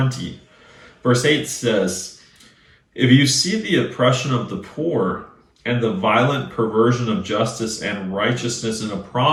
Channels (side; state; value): both; identical; correlation 1.00